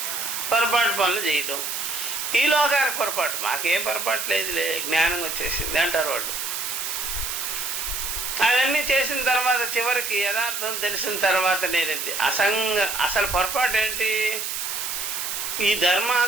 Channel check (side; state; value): right; noise; hiss, 3 dB below the sound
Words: పొరపాటు పనులు చేయడం. ఈ లోకానికి పొరపాటు, మాకేం పొరపాటు లేదులే, జ్ఞానం వచ్చేసింది అంటారు వాళ్ళు. అవన్నీ చేసిన తర్వాత చివరికి యథార్థం తెలిసిన తర్వాత నేనేది అసలు పొరపాటు ఏంటి? ఈ